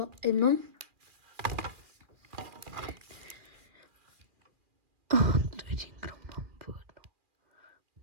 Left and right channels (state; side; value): late; left; 2.3 ms